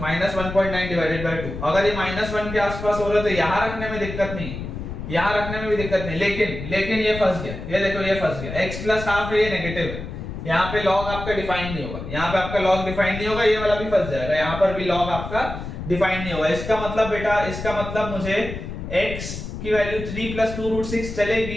1.9 डिवाइडेड बाय 2। अगर ये माइनस 1 के आसपास हो रहा है तो यहाँ रखने में दिक्कत नहीं, यहाँ रखने में भी दिक्कत नहीं, लेकिन ये फंस गया, ये देखो ये फंस गया, x प्लस हाफ है, ये नेगेटिव है, यहाँ पे log आपका डिफाइन नहीं होगा, यहाँ पे आपका log डिफाइन नहीं होगा, ये वाला भी फंस जाएगा, यहाँ पर भी log आपका डिफाइन नहीं होगा। इसका मतलब बेटा, इसका मतलब मुझे x की वैल्यू 3 प्लस 2 रूट 6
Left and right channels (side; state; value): left; noise; rumble, 8 dB below the sound